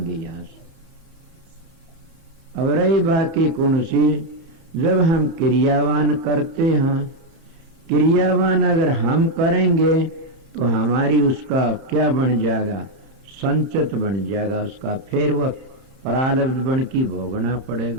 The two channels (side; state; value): left; late; 30 ms